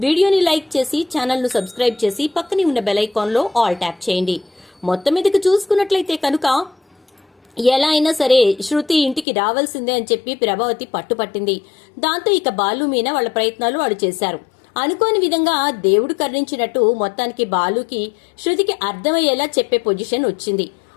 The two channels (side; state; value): right; drops out; at 9.2 s